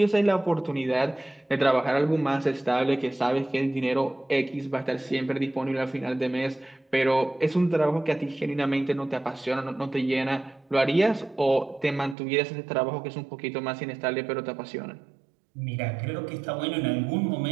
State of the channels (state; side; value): drops out; left; at 12.2 s